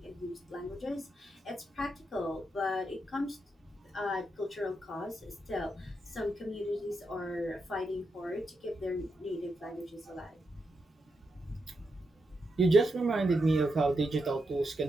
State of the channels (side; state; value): both; normal; correlation 0.84